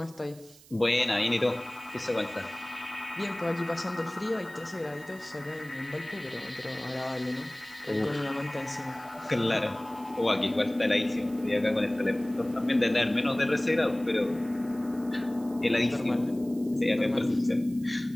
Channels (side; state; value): right; noise; hiss, 23 dB below the sound